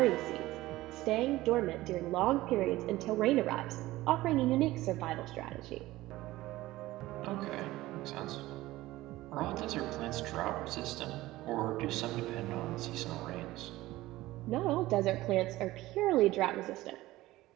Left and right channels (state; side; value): quieter; left; 17.4 dB